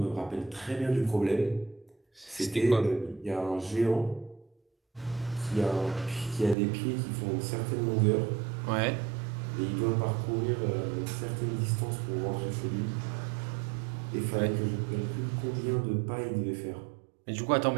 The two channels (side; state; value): left; drops out; at 6.6 s